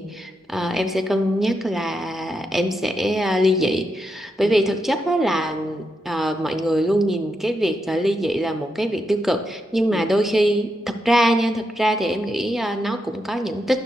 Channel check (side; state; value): both; normal; correlation 0.84